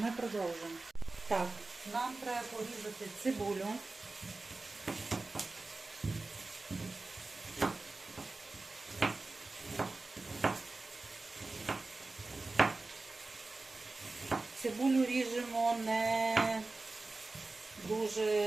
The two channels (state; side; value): quieter; left; 3.4 dB